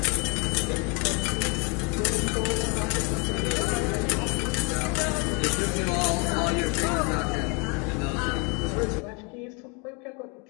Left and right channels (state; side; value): quieter; right; 33.0 dB